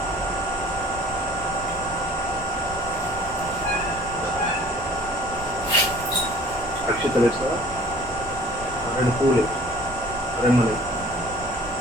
అక్షతలు వేస్తావా రెండు పూలు రెండు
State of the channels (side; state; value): both; normal; correlation 0.49